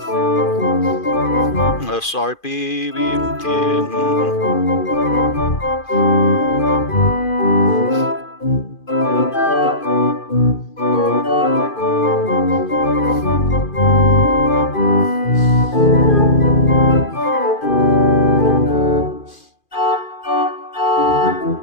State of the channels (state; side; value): late; right; 2.4 ms